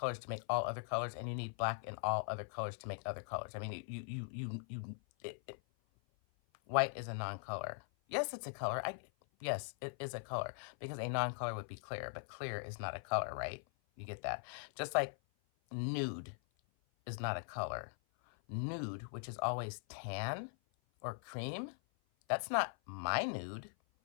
to make all other colors, and you need black in all other colors to make other colors. I mean, white is a non-color. Yes, it's a color. Yes, it is a color, because a non-color would be clear, but clear is not a color, right? You get that? Just like nude is not a color. Nude, which is always tan or cream, that's not my nude.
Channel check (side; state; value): right; silent; 50 dB below the other